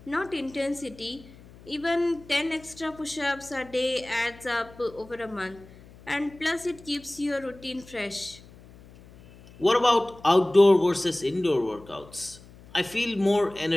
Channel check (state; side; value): noise; left; hum, 22 dB below the sound